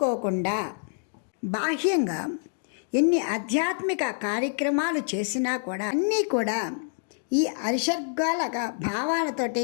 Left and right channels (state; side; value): silent; right; digital silence